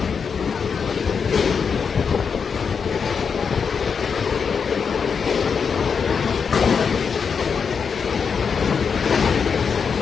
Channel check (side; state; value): right; quieter; 6.1 dB